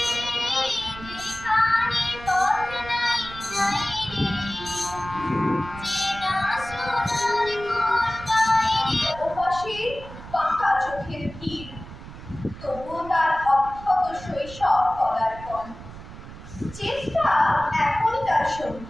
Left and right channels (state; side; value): noise; right; rumble, 14 dB below the sound